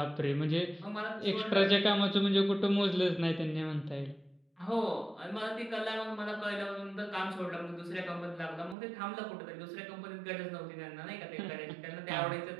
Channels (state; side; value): drops out; left; at 8.8 s